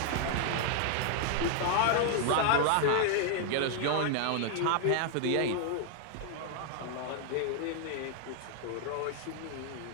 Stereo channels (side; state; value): both; different; correlation 0.00